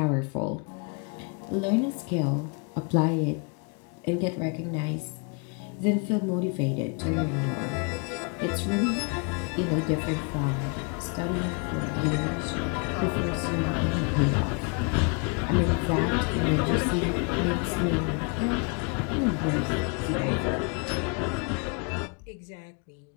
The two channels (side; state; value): right; quieter; 35.2 dB